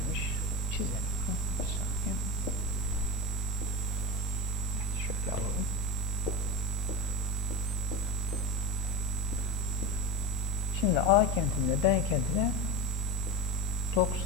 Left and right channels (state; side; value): normal; both; correlation 0.22